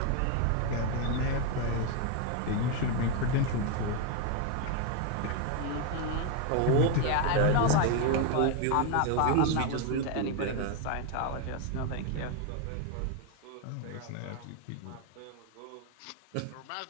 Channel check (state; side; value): different; both; correlation 0.01